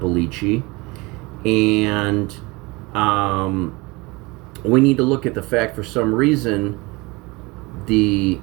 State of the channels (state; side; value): quieter; left; 24.4 dB